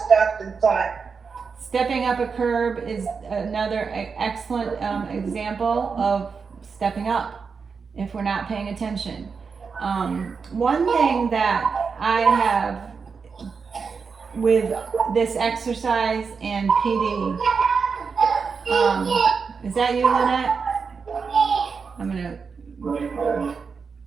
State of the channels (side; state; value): left; quieter; 5.4 dB